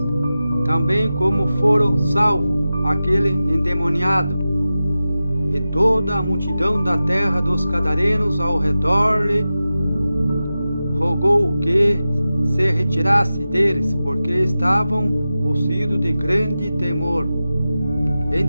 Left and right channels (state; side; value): inverted; both; correlation -0.94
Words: também como foram salvos aquele endemoniado. E toda a multidão da terra dos Gadarenos ao redor lhe rogou que se retirasse deles, porque estavam possuídos de grande temor.